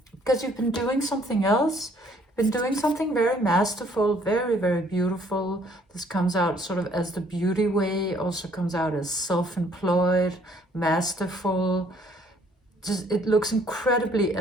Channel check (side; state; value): both; normal; correlation 0.62